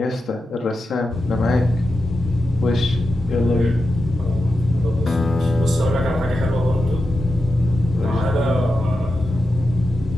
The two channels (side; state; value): both; normal; correlation 0.90